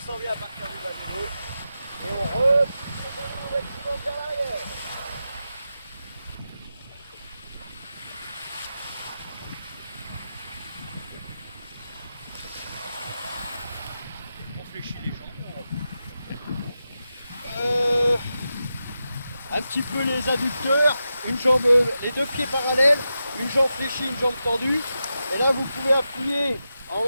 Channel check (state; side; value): inverted; both; correlation -0.90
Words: bien à partir du bas du dos, et on repousse les genoux au maximum vers l'arrière. On fléchit les jambes, on repousse. Un petit peu les adducteurs, une jambe, les deux pieds parallèles, une jambe fléchie, une jambe tendue. Et là, vous pouvez appuyer en